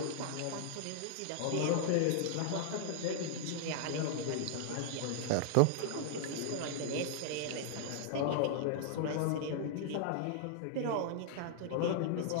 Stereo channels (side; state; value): both; different; correlation -0.01